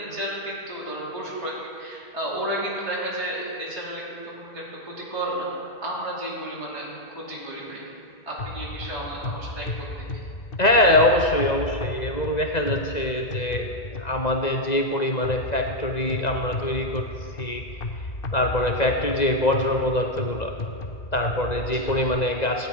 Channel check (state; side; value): late; right; 1.9 ms